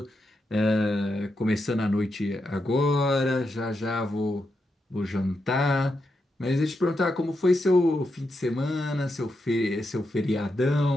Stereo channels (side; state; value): both; normal; correlation 0.85